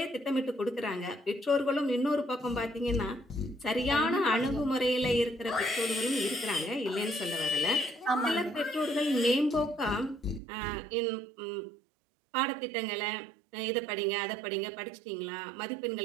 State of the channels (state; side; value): drops out; left; at 10.4 s